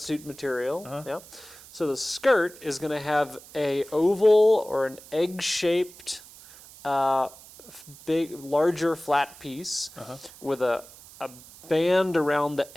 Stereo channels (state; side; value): noise; right; hiss, 20 dB below the sound